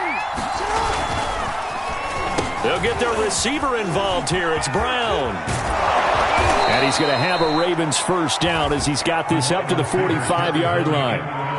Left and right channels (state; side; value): identical; both; correlation 1.00